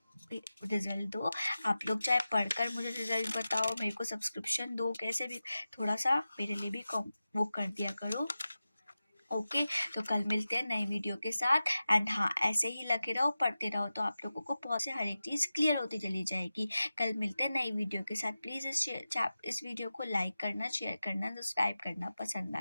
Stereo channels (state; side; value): inverted; both; correlation -0.94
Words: रिजल्ट दो। आप लोग चाहे पढ़कर मुझे रिजल्ट बताओ, मेरे को सब्सक्रिप्शन दो, कैसे भी थोड़ा सा मेरे लिए भी वो कर दिया करो। ओके, तो कल मिलते हैं नई वीडियो के साथ। एंड हाँ, ऐसे ही लगे रहो, पढ़ते रहो, तो आप लोगों को बहुत से हर एक चीज़ क्लियर होती चली जाएगी। कल मिलते हैं नई वीडियो के साथ। प्लीज़ इस वीडियो को लाइक करना, शेयर करना, सब्सक्राइब करना पसंद